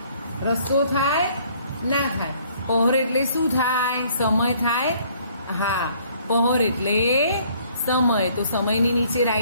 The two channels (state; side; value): inverted; both; correlation -0.61